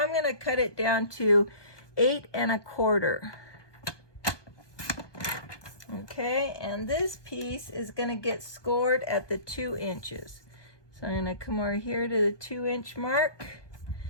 I'm going to cut it down to 8 1/4. Okay, and this piece is going to get scored at the 2 inches. So I'm going to come over here to the 2 inch mark,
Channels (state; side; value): late; right; 1.2 ms